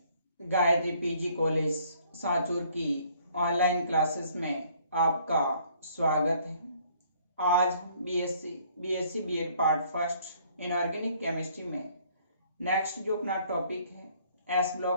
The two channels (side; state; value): both; inverted; correlation -0.61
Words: Gayatri PG college Sanchore की online classes में आपका स्वागत है। आज BSc BEd part first inorganic chemistry में नेक्स्ट जो अपना टॉपिक है एस